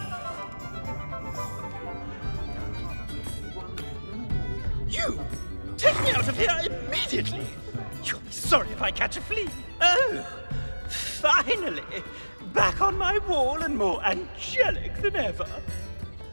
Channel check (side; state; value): both; inverted; correlation -1.00